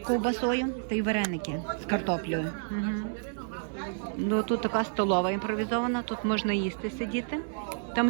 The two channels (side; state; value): left; silent; 58 dB below the other